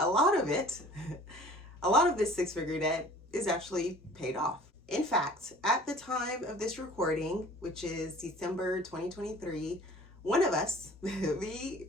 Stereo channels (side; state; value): both; normal; correlation 0.48